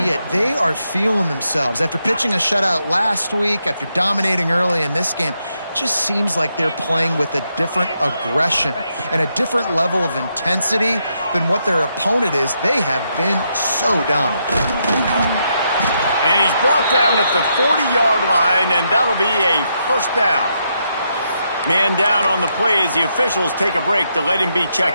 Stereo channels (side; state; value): both; inverted; correlation -0.80